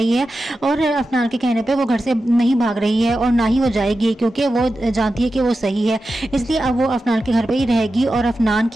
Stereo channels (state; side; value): normal; both; correlation 0.92